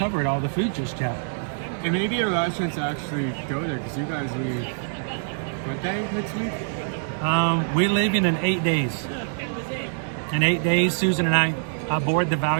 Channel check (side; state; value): left; silent; digital silence